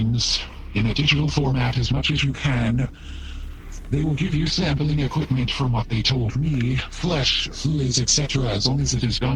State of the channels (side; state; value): both; identical; correlation 1.00